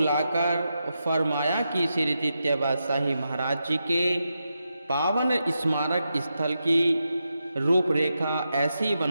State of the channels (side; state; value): both; inverted; correlation -0.87